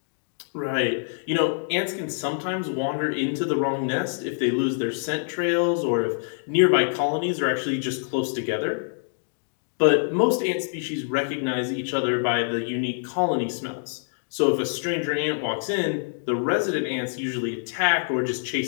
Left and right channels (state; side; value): silent; right; digital silence